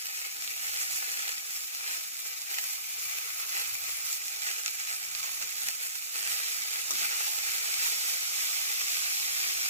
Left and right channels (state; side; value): inverted; both; correlation -0.42